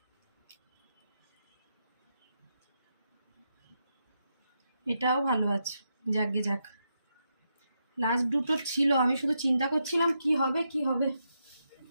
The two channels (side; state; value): both; inverted; correlation -0.83